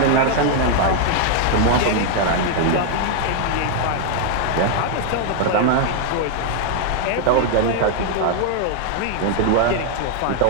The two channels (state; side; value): different; both; correlation 0.00